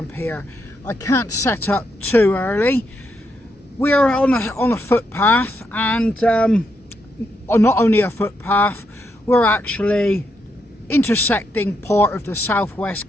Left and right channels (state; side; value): normal; both; correlation 0.80